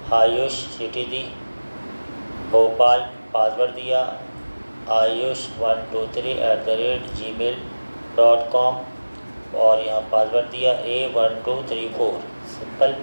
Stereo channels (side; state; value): both; inverted; correlation -1.00